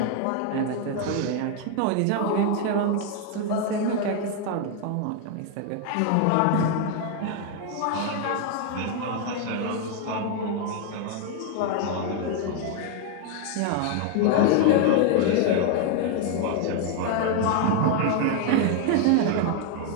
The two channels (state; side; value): different; both; correlation 0.01